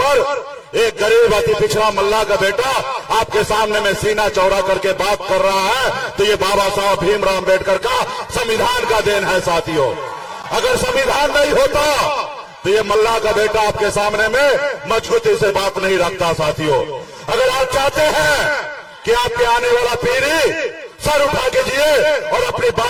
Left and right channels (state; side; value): identical; both; correlation 1.00